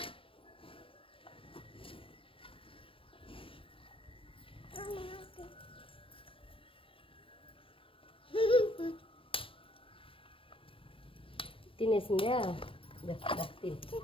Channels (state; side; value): late; right; 0.26 ms